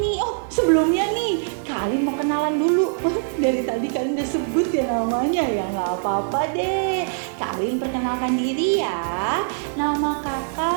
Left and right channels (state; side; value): silent; left; digital silence